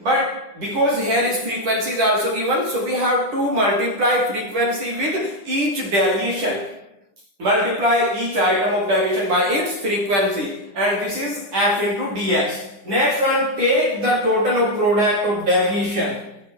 But because here is frequency is also given, so we have to multiply frequency with each deviation. Multiply each item of deviation by its frequency, and this is f into dx. Next one, take the total of product of deviation.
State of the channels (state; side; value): late; left; 10 ms